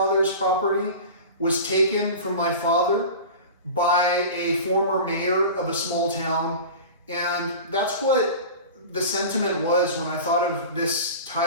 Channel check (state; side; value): inverted; both; correlation -0.34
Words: property, was taken from my father by a former mayor of a small town. And that's what the sentiment was when I thought of this